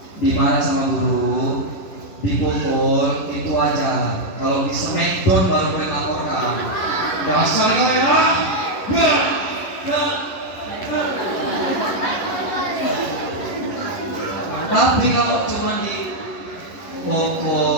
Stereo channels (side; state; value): right; late; 11 ms